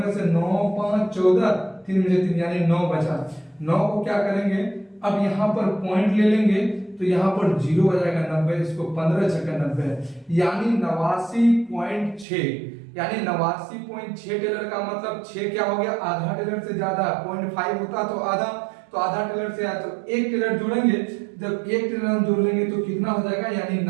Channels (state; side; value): drops out; left; at 12.2 s